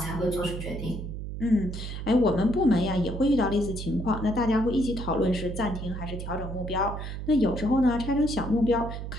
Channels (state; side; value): noise; right; hum, 7 dB below the sound